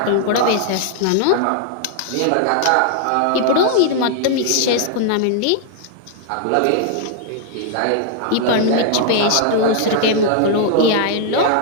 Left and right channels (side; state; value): both; different; correlation 0.00